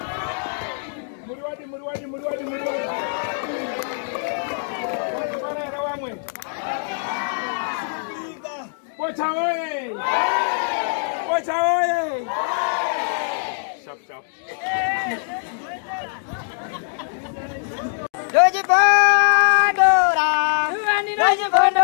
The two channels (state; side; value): silent; right; digital silence